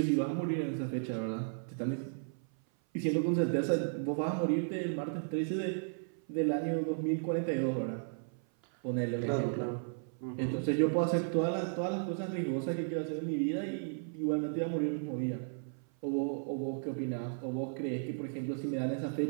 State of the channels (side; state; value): left; silent; 55 dB below the other